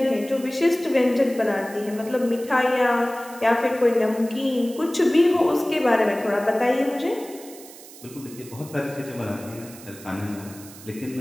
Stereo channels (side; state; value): right; noise; hiss, 18 dB below the sound